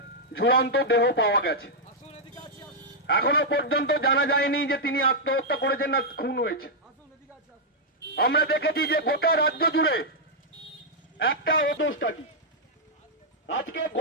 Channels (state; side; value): normal; both; correlation -0.05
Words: ঝুলন্ত দেহ পাওয়া গেছে। এখনো পর্যন্ত জানা যায়নি যে তিনি আত্মহত্যা করেছেন না খুন হয়েছে। আমরা দেখেছি যে গোটা রাজ্য জুড়ে একটা অদোষটা কি, আজকে